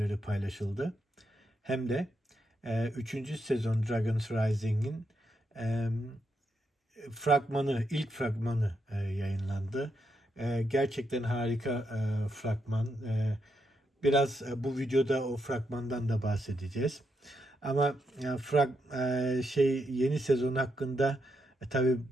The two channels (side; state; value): both; normal; correlation 0.81